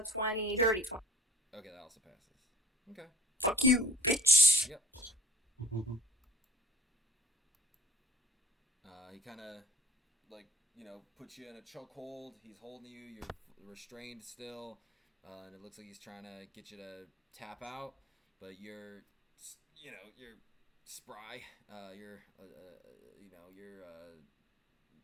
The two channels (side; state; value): both; normal; correlation 0.50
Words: 20, dirty 20. Okay, that also passes. Okay. Fuck you, bitch. Yep. He kind of like puts you in a chokehold. He's holding you. You're restrained still, and it looks like he's trying to get you to tap out, but you're spry. You're